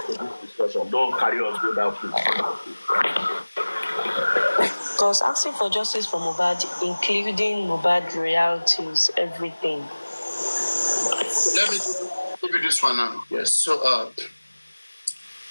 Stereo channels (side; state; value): both; inverted; correlation -1.00